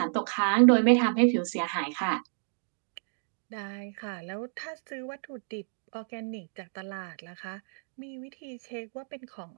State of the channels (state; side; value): silent; left; digital silence